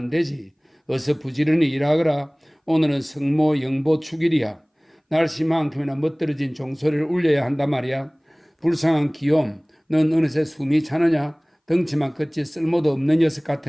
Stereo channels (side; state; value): both; identical; correlation 1.00